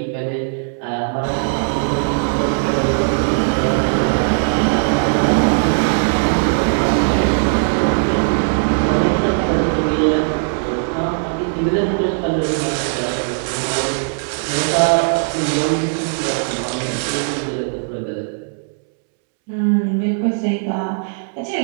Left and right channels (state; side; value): silent; left; 67 dB below the other